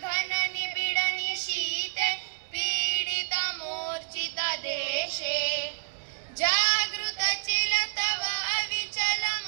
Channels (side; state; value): left; silent; 58 dB below the other